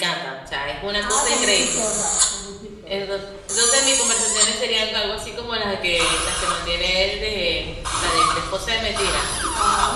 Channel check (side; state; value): both; identical; correlation 1.00